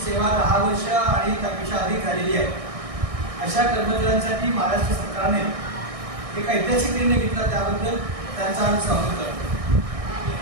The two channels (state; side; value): late; left; 1.6 ms